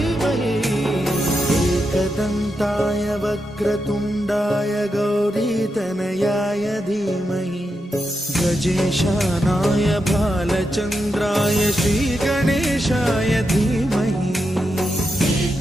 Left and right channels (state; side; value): normal; both; correlation 0.86